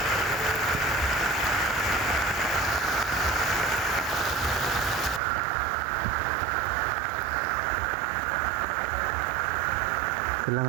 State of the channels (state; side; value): drops out; left; at 5.2 s